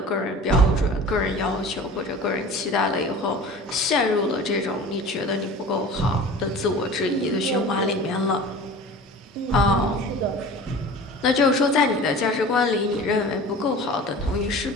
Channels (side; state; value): both; normal; correlation 0.39